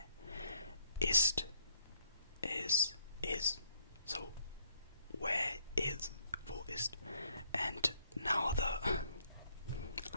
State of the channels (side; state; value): both; inverted; correlation -0.69